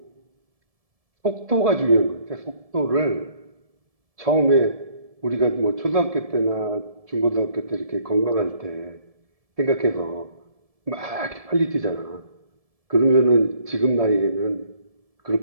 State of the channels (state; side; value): late; left; 1.7 ms